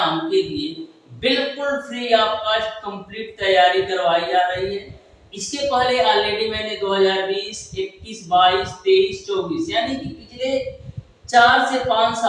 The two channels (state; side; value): identical; both; correlation 1.00